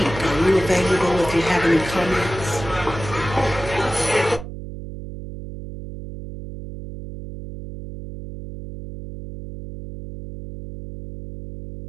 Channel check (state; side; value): noise; right; hum, 11 dB below the sound